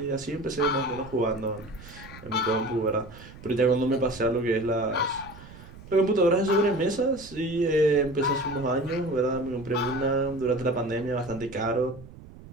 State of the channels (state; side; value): noise; right; rumble, 18 dB below the sound